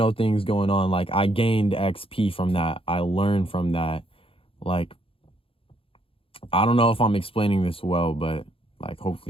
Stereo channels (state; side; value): late; right; 0.27 ms